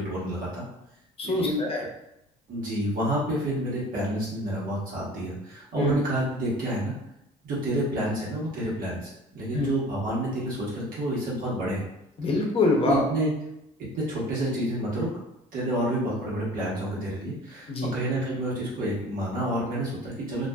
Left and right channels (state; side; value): normal; both; correlation 0.45